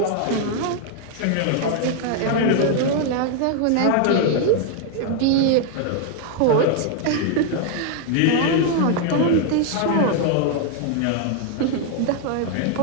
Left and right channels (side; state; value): both; different; correlation 0.00